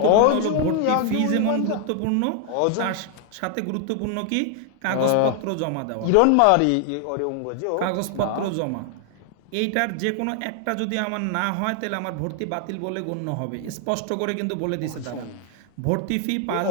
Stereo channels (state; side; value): different; both; correlation 0.00